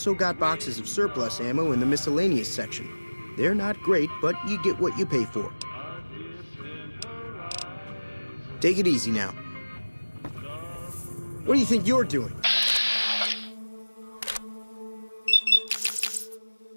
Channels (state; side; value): inverted; both; correlation -1.00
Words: got boxes of surplus ammo in the miscellaneous section. They're not great, but you get what you pay for. Take it easy now. What do you think you're doing?